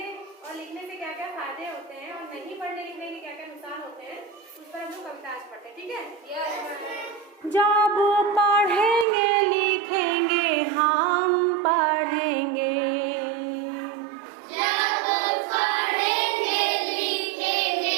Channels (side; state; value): left; drops out; at 9.1 s